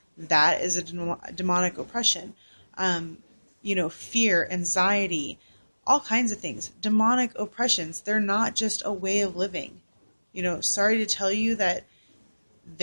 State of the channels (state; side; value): inverted; both; correlation -1.00